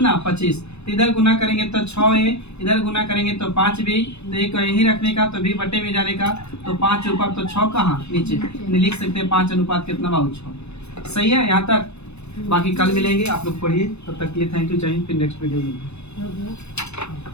25, इधर गुना करेंगे तो 6 है, इधर गुना करेंगे तो 5 भी, तो एक यही रखने का तो भी बटे में जाने का तो 5 ऊपर तो 6 कहाँ नीचे, लिख सकते हैं 5 अनुपात कितना बाबू 6। सही है यहाँ तक, बाकी कल मिलेंगे, आप लोग पढ़िए, तब तक के लिए थैंक यू, चाहिए फिर नेक्स्ट वीडियो में।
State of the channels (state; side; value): late; right; 0.80 ms